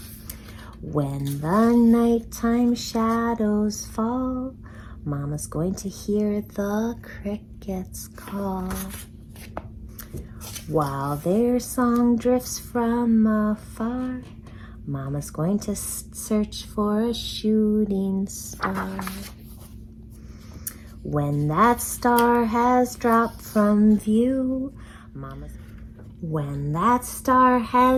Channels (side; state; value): both; identical; correlation 1.00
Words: When the nighttime shadows fall, Mama's going to hear the crickets call. While their song drifts from afar, Mama's going to search for a shooting star. When that star has dropped from view, When that star